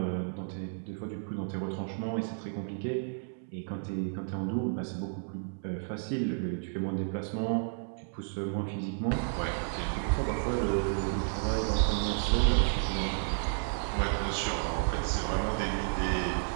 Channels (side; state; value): left; silent; 56 dB below the other